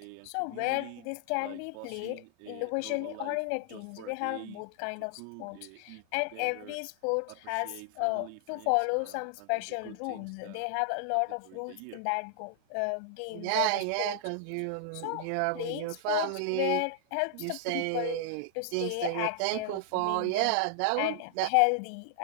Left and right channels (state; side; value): different; both; correlation -0.01